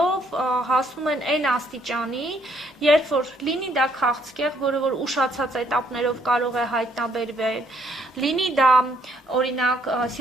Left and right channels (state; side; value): normal; both; correlation 0.68